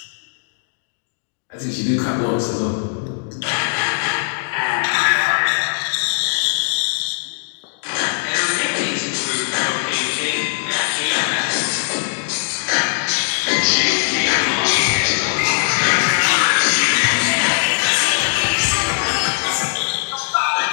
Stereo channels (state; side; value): silent; right; digital silence